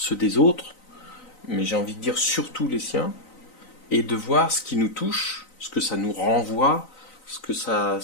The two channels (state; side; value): late; right; 3.9 ms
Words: des autres, mais j'ai envie de dire surtout les siens, et de voir ce qui nous touche, ce que ça nous renvoie, ce que